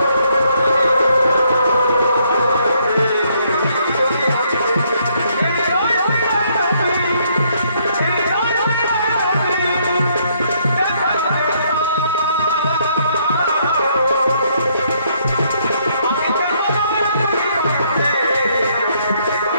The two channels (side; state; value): both; inverted; correlation -0.70